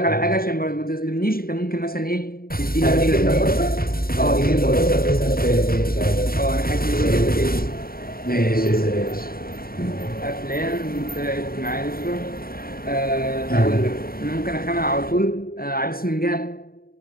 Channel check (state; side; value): late; right; 0.43 ms